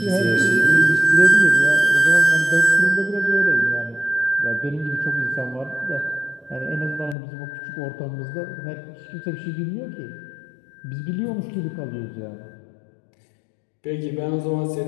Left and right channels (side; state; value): right; drops out; at 7.2 s